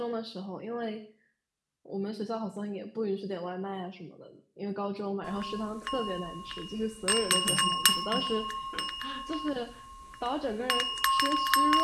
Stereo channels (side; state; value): both; identical; correlation 1.00